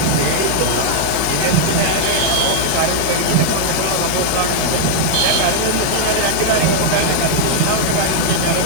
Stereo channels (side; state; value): both; different; correlation 0.00